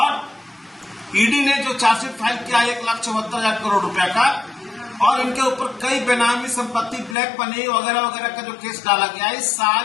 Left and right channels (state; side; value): drops out; right; at 7.2 s